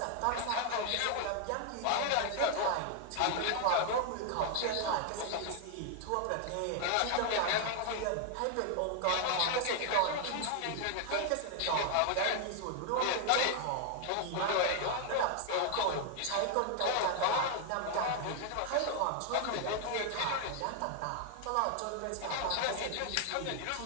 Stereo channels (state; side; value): different; both; correlation 0.00